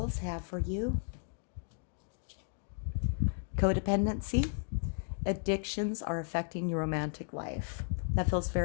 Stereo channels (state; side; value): silent; right; 55 dB below the other